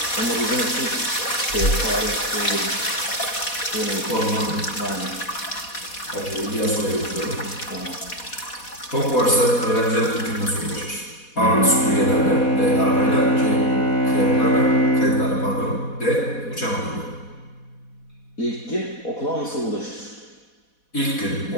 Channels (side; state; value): right; late; 4.1 ms